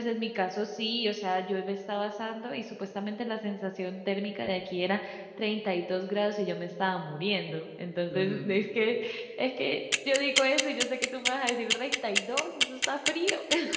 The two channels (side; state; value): both; identical; correlation 1.00